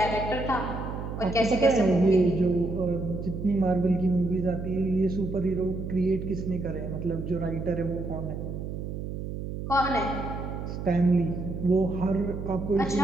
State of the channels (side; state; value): right; noise; hum, 6 dB below the sound